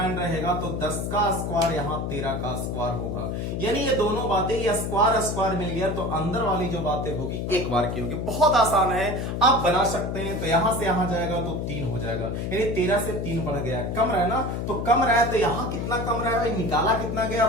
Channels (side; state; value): left; noise; hum, 3 dB below the sound